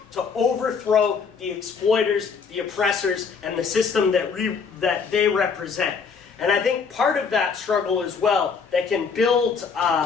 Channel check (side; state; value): right; quieter; 5.6 dB